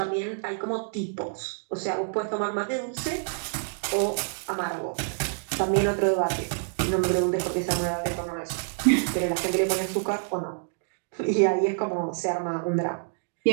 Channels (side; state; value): left; silent; digital silence